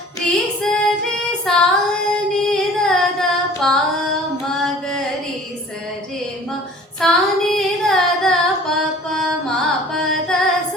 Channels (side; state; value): both; normal; correlation 0.48